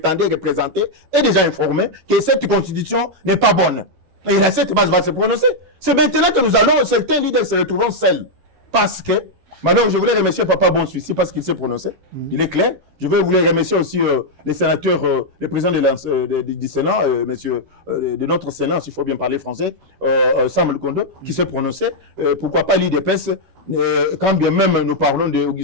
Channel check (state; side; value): late; left; 12 ms